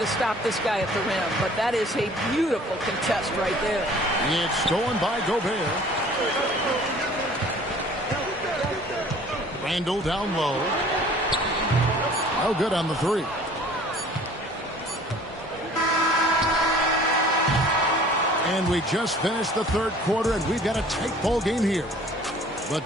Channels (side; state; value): both; normal; correlation 0.50